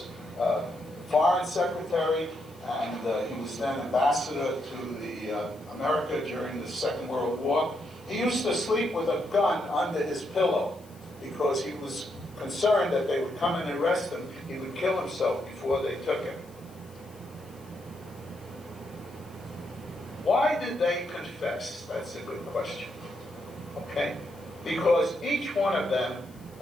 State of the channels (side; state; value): left; noise; hiss, 26 dB below the sound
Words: foreign secretary, and he was then ambassador to America during the Second World War. He used to sleep with a gun under his pillow because he was concerned that they would come and arrest him. He would kill himself before they took him. Why did they confess? That's a good question. Okay? Because each one of them